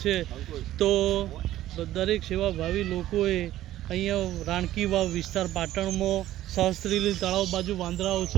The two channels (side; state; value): left; quieter; 13.9 dB